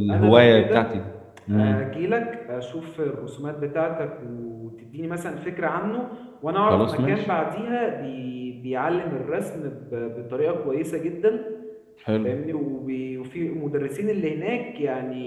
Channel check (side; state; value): both; identical; correlation 1.00